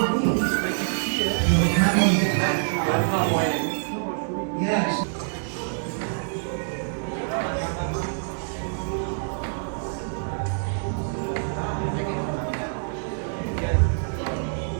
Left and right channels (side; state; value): left; silent; digital silence